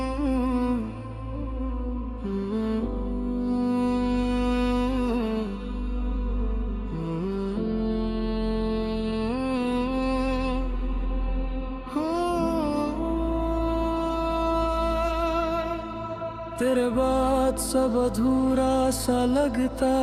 तेरे बाद सब अधूरा सा लगता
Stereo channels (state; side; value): identical; both; correlation 1.00